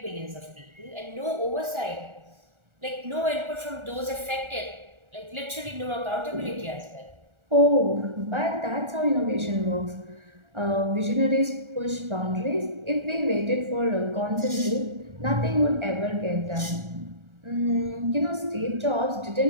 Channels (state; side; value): late; left; 1.4 ms